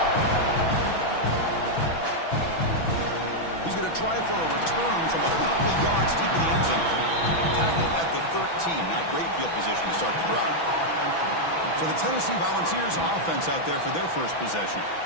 He's going to try for a return from a couple of yards deep in the end zone. Tackled at the 13. Not great field position to start the drive. So the Tennessee Volunteers offense out there for their first possession.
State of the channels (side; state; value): right; late; 6.1 ms